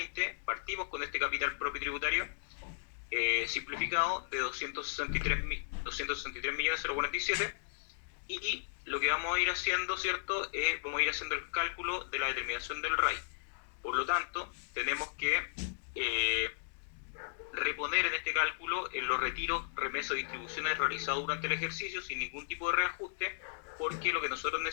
partimos con este capital propio tributario simplificado de 263.047, y lo que vamos a ir haciendo, ¿cierto? Vamos a ir haciendo el cálculo de la determinación del RAI. Por lo tanto, tenemos que reponer en este cálculo en los retiros, remesas o distribuciones realizados durante el ejercicio sin ningún tipo de reajuste, porque lo que nosotros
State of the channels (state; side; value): silent; right; digital silence